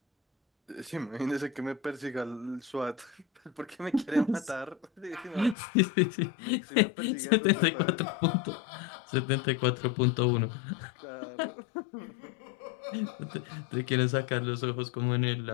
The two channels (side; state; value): right; drops out; at 5.6 s